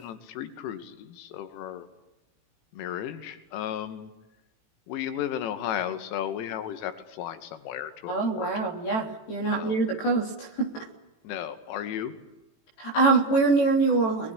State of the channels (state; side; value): late; right; 18 ms